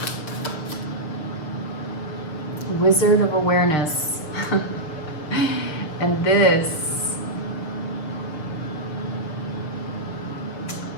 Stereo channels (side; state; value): right; late; 6.6 ms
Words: Wizard of Awareness. And this,